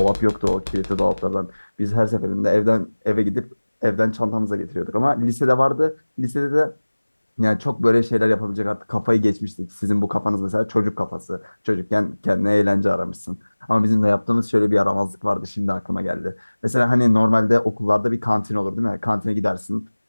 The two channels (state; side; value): inverted; both; correlation -1.00